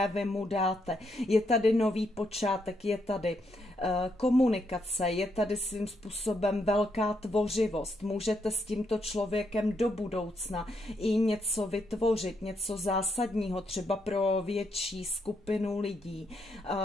vy mu dáte. Je tady nový počátek, je tady komunikace, je tady svým způsobem velká tvořivost. Můžete s tímto člověkem do budoucna i něco vytvořit, něco zásadního, třeba pro větší skupinu lidí.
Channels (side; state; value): both; normal; correlation 0.78